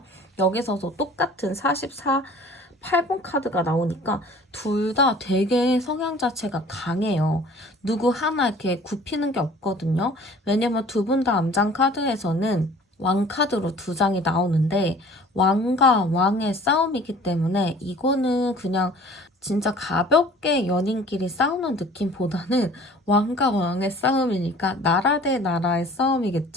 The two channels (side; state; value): both; normal; correlation 0.49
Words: 여기서도 똑같은 44, 8번 카드가 나오니까 둘 다 되게 성향 자체가 강해요. 누구 하나 이렇게 굽히는 게 없거든요. 왜냐면 두 분 다 암장 카드에서는 왕 카드로 두 장이 나오는데 왕과 왕의 싸움이기 때문에 이거는 그냥 진짜 가볍게 연인끼리 싸우는 느낌보다는 왕과 왕의 싸움이니까 나라 대 나라의